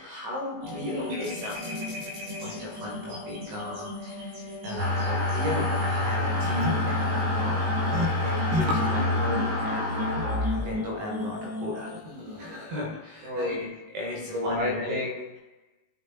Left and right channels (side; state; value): left; late; 19 ms